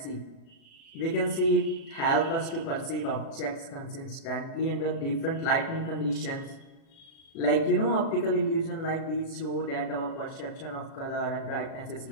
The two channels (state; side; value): late; right; 37 ms